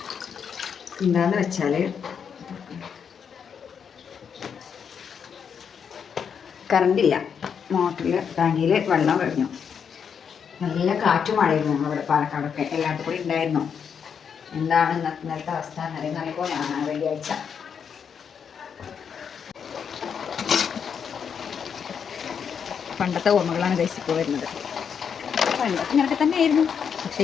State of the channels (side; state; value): right; quieter; 7.1 dB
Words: എന്താന്ന് വെച്ചാൽ കറണ്ടില്ല. മോട്ടറിൽ ടാങ്കിയിൽ വെള്ളം കഴിഞ്ഞു. നല്ല കാറ്റും മഴയായിരുന്നു ഞങ്ങളുടെ പാലക്കാടൊക്കെ. എല്ലായിടത്തും കൂടി ഉണ്ടായിരുന്നു. എന്താണ് ഇന്നത്തെ അവസ്ഥ എന്നറിയുമ്പോൾ ഞാൻ വെള്ളിയാഴ്ച പണ്ടത്തെ ഓർമ്മകളാണ് ഗൈസ് ഇപ്പോൾ വരുന്നത്. പണ്ടൊക്കെ ഇങ്ങനൊക്കെ തന്നെ ആയിരുന്നു, പക്ഷെ